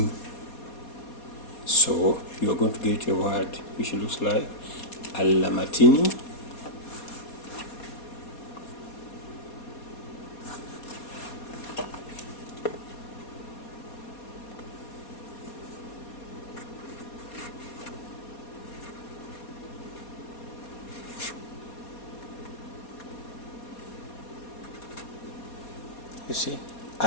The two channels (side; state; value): right; late; 4.2 ms